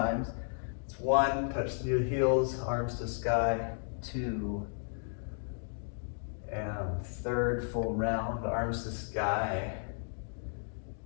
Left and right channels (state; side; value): silent; right; digital silence